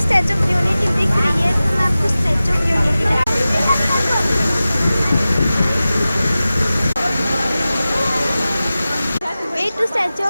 of unity दिख रही है, तो मैं आपको Statue of Unity way to Statue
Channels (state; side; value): inverted; both; correlation -0.96